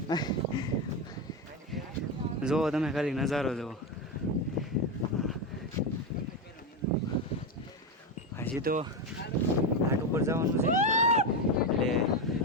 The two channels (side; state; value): both; normal; correlation 0.13